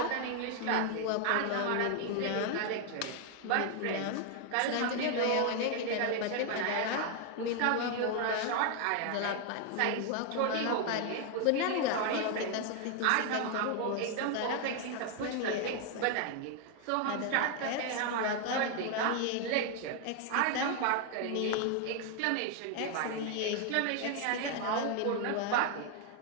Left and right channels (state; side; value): different; both; correlation 0.00